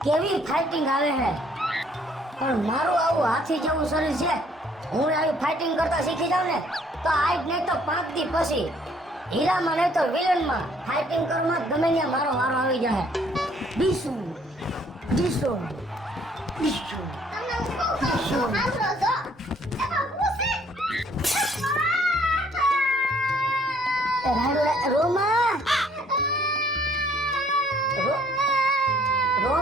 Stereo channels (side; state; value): both; normal; correlation 0.62